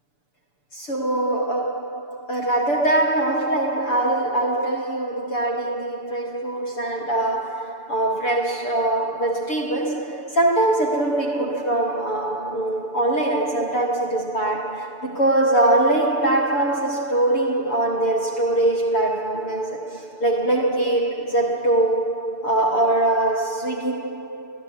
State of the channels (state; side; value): late; right; 6.9 ms